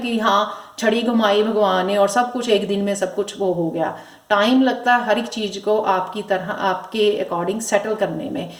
हाँ छड़ी घुमाई भगवान ने और सब कुछ एक दिन में सब कुछ वो हो गया। टाइम लगता है हर एक चीज़ को आपकी तरह, आपके अकॉर्डिंग सेटल करने में।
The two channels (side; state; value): both; identical; correlation 1.00